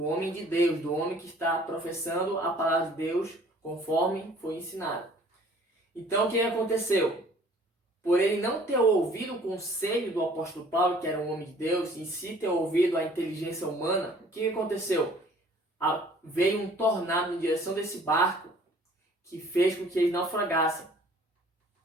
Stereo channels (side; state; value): both; normal; correlation 0.54